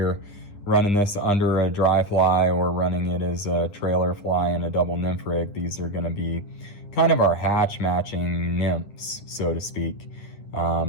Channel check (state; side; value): late; right; 9.9 ms